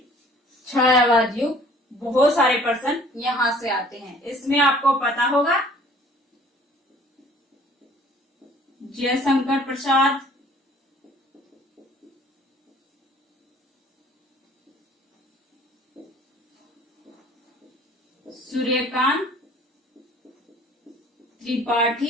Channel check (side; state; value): both; normal; correlation 0.53